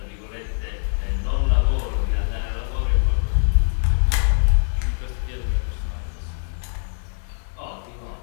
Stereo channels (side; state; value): right; silent; 63 dB below the other